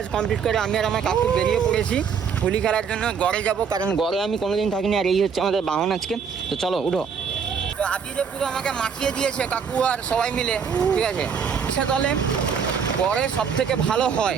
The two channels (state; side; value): quieter; left; 6.6 dB